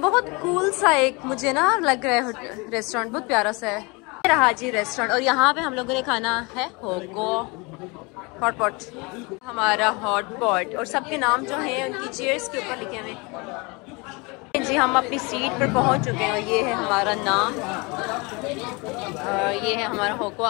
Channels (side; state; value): right; quieter; 27.7 dB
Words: कूल सा एक मुझे ना लग रहा है रेस्टोरेंट, बहुत प्यारा सा है। रहा जी रेस्टोरेंट, और यहाँ पे हम लोगों ने खाना है होगो हॉट पॉट, हमारा हॉट पॉट, और सबके नाम जो हैं उनकी चेयर्स के ऊपर लिखे हुए जी। हम अपनी सीट पर पहुंच चुके हैं और ये है हमारा नाम, ये है हमारा होगो।